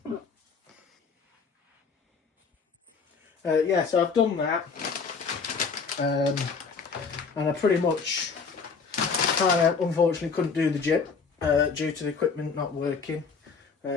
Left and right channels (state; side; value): quieter; right; 5.2 dB